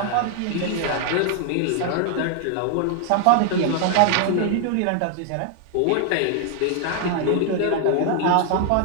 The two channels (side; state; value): both; different; correlation 0.00